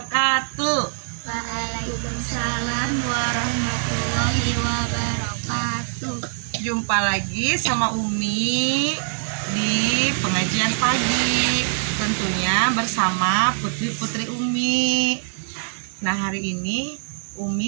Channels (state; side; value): silent; left; digital silence